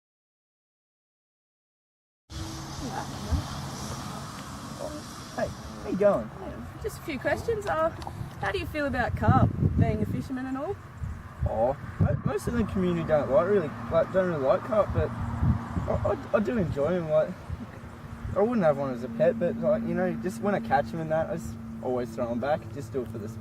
Hey, how you going? Just a few questions. How do you feel about carp, being a fisherman and all? Oh, most of the community don't really like carp, but I do enjoy them. Like, I wouldn't have one as a pet, but like just when I catch them and that, I just always throw them back. Just do it for the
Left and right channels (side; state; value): both; identical; correlation 1.00